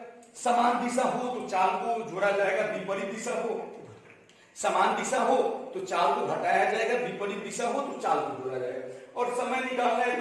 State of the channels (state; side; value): identical; both; correlation 1.00